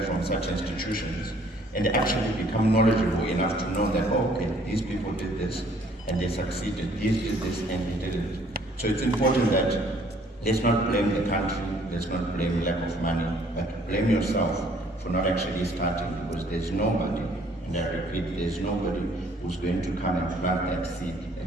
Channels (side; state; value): both; normal; correlation 0.60